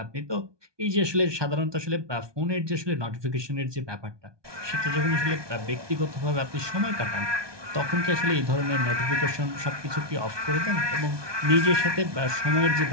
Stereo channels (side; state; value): left; late; 1.2 ms